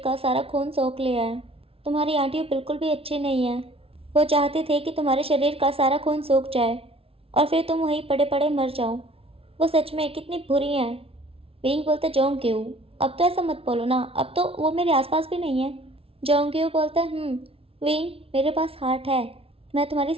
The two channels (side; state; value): left; late; 0.27 ms